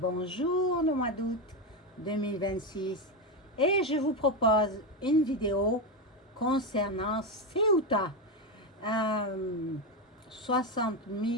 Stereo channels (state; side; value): normal; both; correlation 0.11